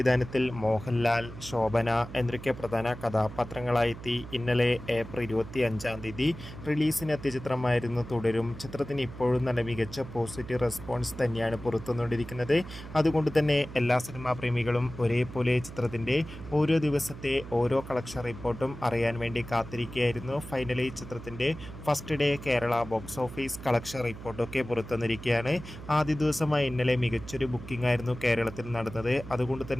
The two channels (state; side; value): noise; right; hum, 13 dB below the sound